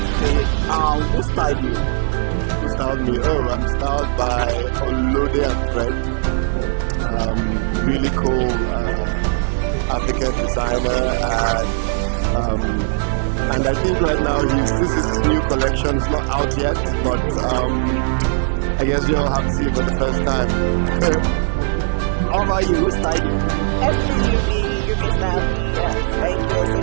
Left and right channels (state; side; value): silent; left; 66 dB below the other